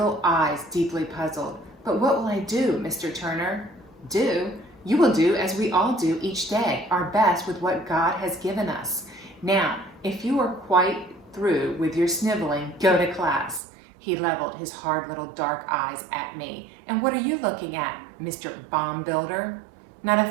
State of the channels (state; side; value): drops out; left; at 13.6 s